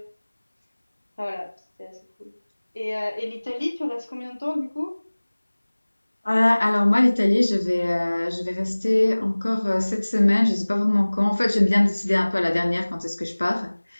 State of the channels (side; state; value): both; inverted; correlation -1.00